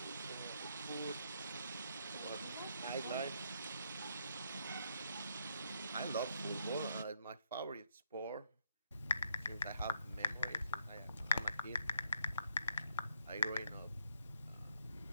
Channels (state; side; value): inverted; both; correlation -0.75